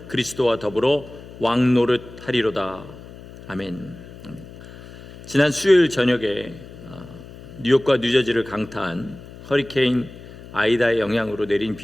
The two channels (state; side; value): noise; left; hum, 17 dB below the sound